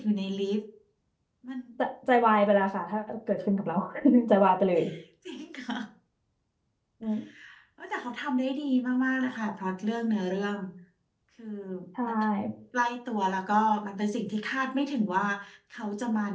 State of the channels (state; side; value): identical; both; correlation 1.00